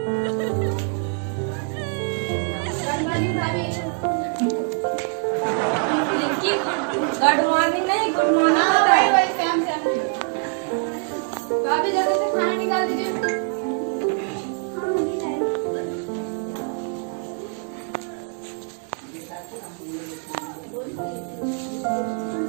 गुड मॉर्निंग नहीं गुड मॉर्निंग होता है। भाभी जल्दी से खाना निकाल दीजिए।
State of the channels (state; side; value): quieter; left; 39.7 dB